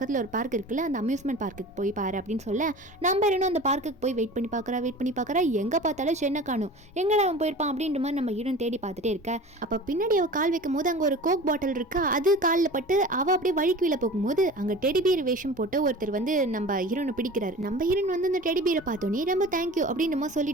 ஒரு பார்க் இருக்குல்ல அந்த அம்யூஸ்மெண்ட் பார்க்குக்கு போய் பாரு அப்படின்னு சொல்ல, நம்ம இன்னும் அந்த பார்க்குக்கு போய் வெயிட் பண்ணி பார்க்குறா. எங்கே பார்த்தாலும் சென்னை காணும், எங்கடா அவன் போயிருப்பான் அப்படின்ற மாதிரி நம்ம ஹீரோன் தேடி பார்த்துட்டே இருக்க. அப்போ பின்னாடி அவள் கால் வைக்கும் போது அங்கே ஒரு கோக் பாட்டில் இருக்கா, அது காலில் பட்டு அவள் அப்படியே வழிக்குள்ள போகும்போது அங்கே டெடிபியர் வேஷம் போட்டு ஒருத்தர் வந்து நம்ம ஹீரோனை பிடிக்கிறாரு. நம்ம ஹீரோன் வந்து அந்த டெடிபியரை பார்த்தோன்னே ரொம்ப தேங்க்யூ அப்படின்னு நம்ம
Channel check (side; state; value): both; normal; correlation 0.38